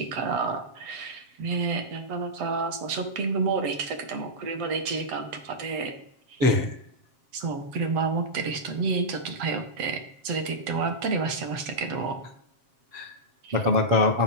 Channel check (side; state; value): left; late; 7.4 ms